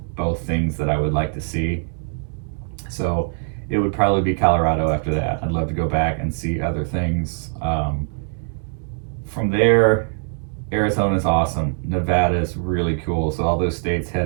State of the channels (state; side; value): silent; left; digital silence